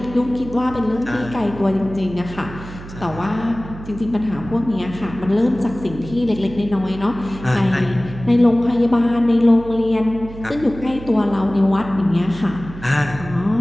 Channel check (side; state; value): right; noise; hum, 14 dB below the sound